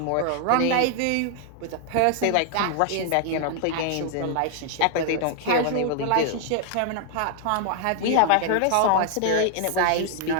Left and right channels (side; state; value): both; different; correlation 0.00